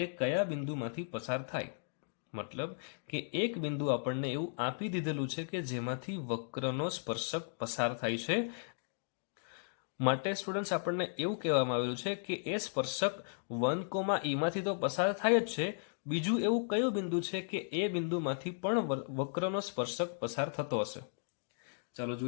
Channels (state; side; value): silent; right; digital silence